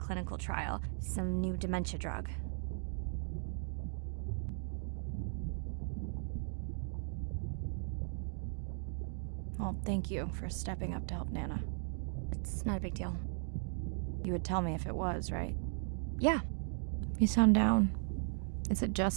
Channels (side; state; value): left; silent; digital silence